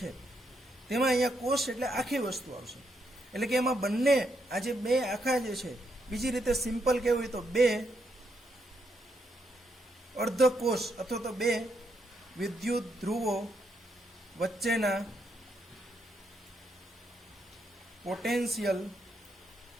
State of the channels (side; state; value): both; normal; correlation 0.78